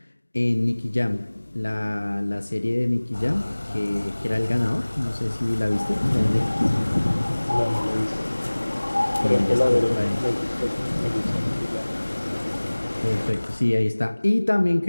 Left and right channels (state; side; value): inverted; both; correlation -1.00